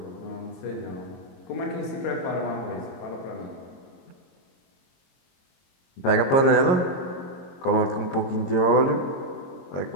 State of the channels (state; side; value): late; right; 22 ms